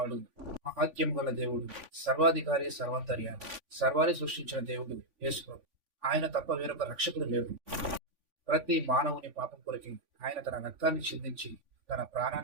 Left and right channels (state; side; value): late; left; 3.5 ms